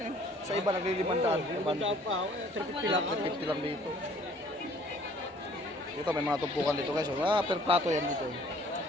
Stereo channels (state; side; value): normal; both; correlation 0.56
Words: eh. Sa iba, naglilimandaan. Magandaan pa. 350 lang. 350 lang dito. Dito, may mga tumpukan dito guys, oh. Ah, per plato yan dito, eh.